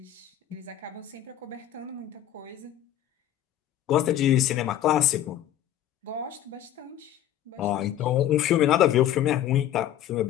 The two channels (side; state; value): right; quieter; 11.7 dB